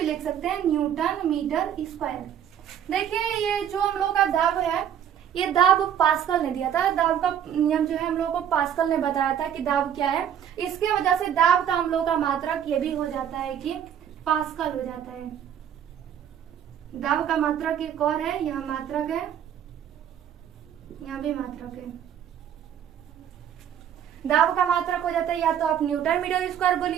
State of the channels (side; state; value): left; quieter; 9.5 dB